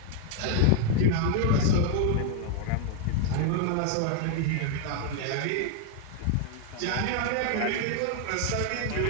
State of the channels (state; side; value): different; both; correlation 0.00